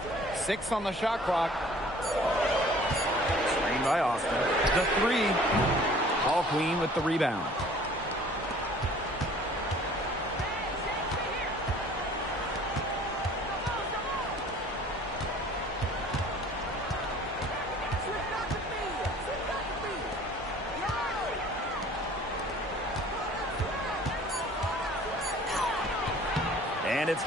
6 on the shot clock. Screen by Austin. The 3. Ball Queen with the rebound. And it's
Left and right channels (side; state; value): both; normal; correlation 0.51